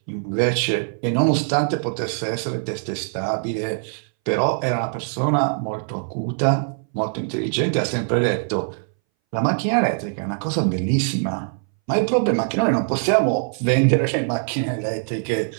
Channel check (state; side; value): silent; left; 62 dB below the other